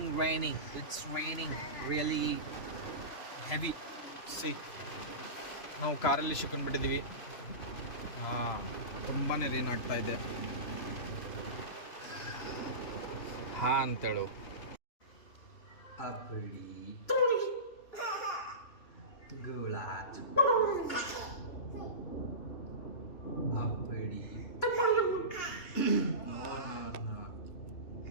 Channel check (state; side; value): late; right; 3.0 ms